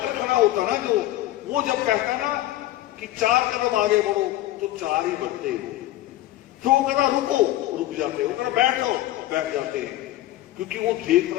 खड़ा होता ना, जो वो जब कहता ना कि 4 कदम आगे बढ़ो, तो 4 ही बढ़ते हो। तो वो कहता रुको, रुक जाते, वो कहता बैठो, बैठ जाते हैं। क्योंकि वो देख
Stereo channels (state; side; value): quieter; right; 15.2 dB